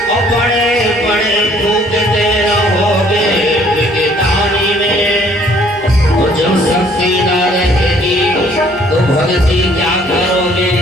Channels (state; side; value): noise; left; hum, 24 dB below the sound